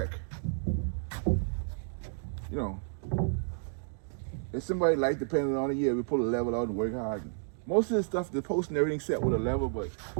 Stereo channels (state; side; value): silent; left; digital silence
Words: You know, if somebody like depending on it, yeah, we pull a level out and work hard. Most of the stuff, the post and everything set with a level, but